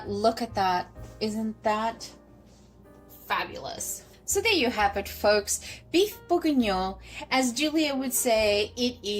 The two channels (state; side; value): identical; both; correlation 1.00